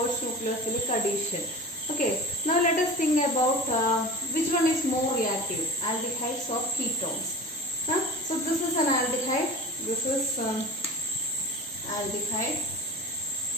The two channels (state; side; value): normal; both; correlation 0.34